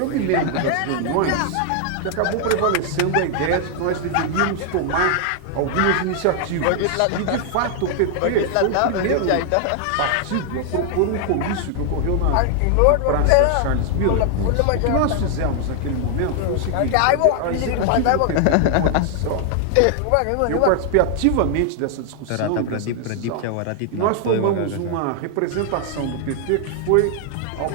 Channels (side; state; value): both; different; correlation 0.00